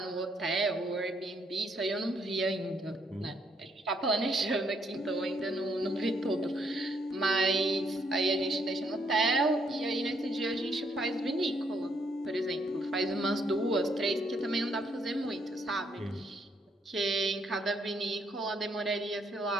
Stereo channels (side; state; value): both; normal; correlation 0.72